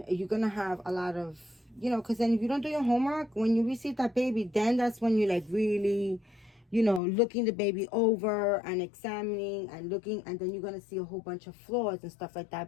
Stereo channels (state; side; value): drops out; right; at 7.0 s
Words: you're gonna have a lot of, you know, because then if you don't do your homework, when you receive that baby, then that's when you like really, you know, looking the baby over and examining and looking, and then you're gonna see a whole bunch of flaws and stuff like